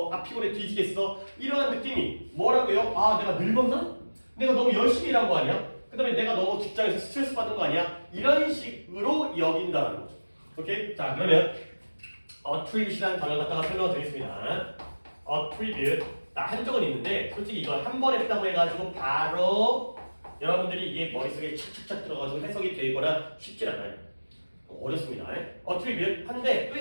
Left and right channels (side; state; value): both; inverted; correlation -1.00